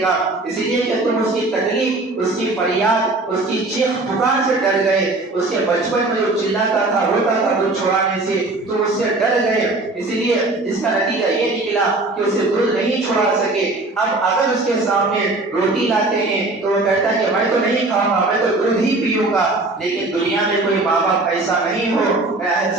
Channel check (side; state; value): left; quieter; 3.0 dB